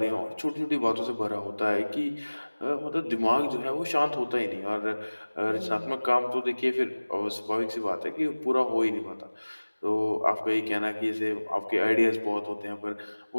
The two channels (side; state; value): both; inverted; correlation -1.00